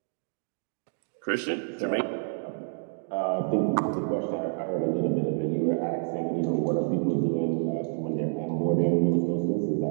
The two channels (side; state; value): left; silent; 59 dB below the other